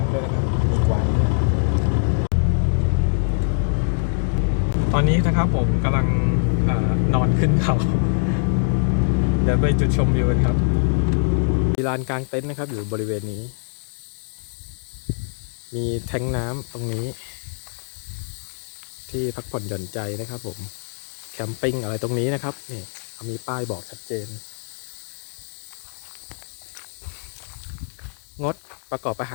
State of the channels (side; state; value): right; silent; digital silence